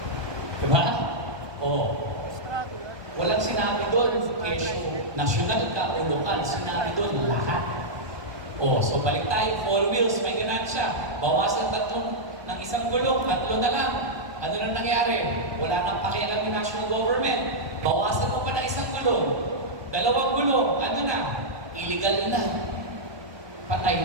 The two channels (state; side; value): late; left; 1.2 ms